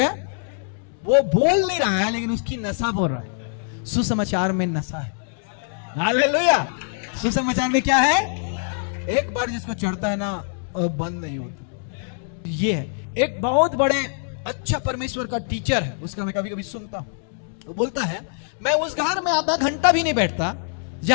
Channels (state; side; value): silent; right; digital silence